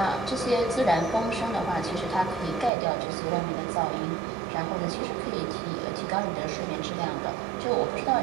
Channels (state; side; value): drops out; left; at 2.7 s